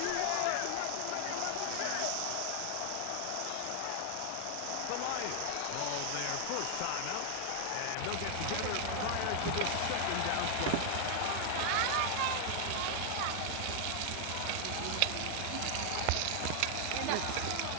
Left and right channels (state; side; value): different; both; correlation 0.00